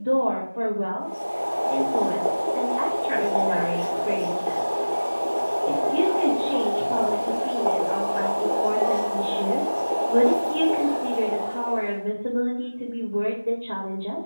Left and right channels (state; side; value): inverted; both; correlation -1.00